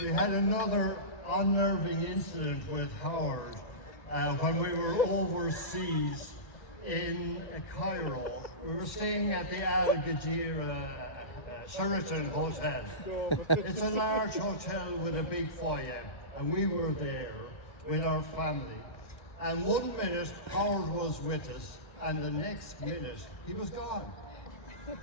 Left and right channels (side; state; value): right; late; 1.8 ms